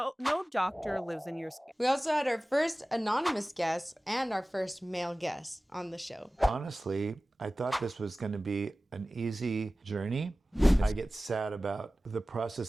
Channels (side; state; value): both; normal; correlation 0.97